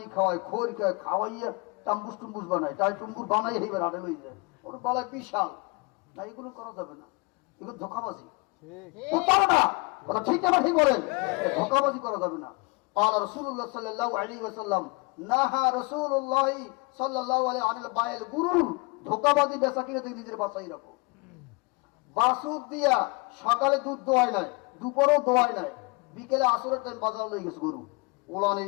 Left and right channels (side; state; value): right; quieter; 28.7 dB